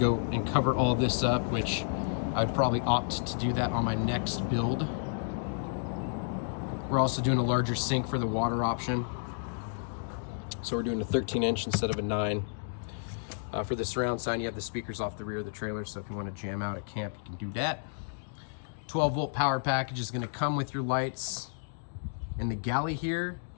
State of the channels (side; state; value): right; silent; digital silence